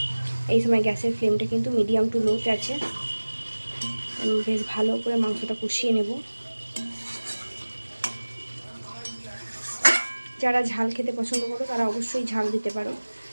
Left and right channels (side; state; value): both; inverted; correlation -1.00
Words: এই সময় গ্যাসের ফ্লেমটা কিন্তু মিডিয়াম টু লোতে আছে। আমি বেশ ভালো করে মাংসটা কষিয়ে নেব। যারা ঝাল খেতে পছন্দ করো তারা অবশ্যই ঝাল দিতে পারো।